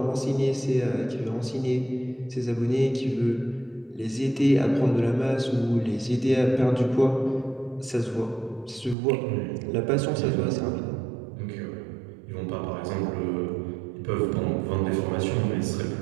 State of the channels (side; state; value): left; drops out; at 9.0 s